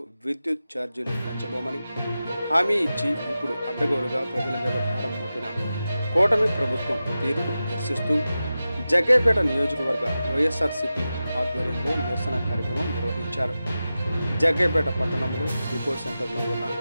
విద్యుత్ ఛార్జీలు పెంచబోమని హామీ ఇచ్చి ఇప్పుడు అడ్డగోలుగా ప్రజల మీద భారం మోపిన కూటమి ప్రభుత్వం తీరును నిరసిస్తూ జగ్గైపేట నియోజకవర్గ వైఎస్ఆర్సీపీ ఆధ్వర్యంలో నిరసన కార్యక్రమం నిర్వహించారు. జగ్గైపేట పట్టణంలో డిపో సెంటర్లో ఉన్న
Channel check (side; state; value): both; inverted; correlation -0.93